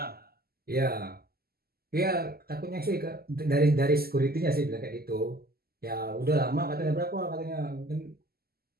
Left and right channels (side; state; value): left; late; 0.45 ms